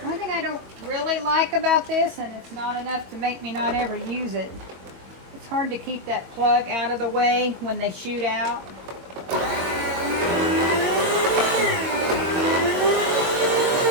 Like about this, and it's not enough to make me not ever use it. It's hard to keep that plug out of the way when they shoot out.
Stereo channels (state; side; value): late; left; 22 ms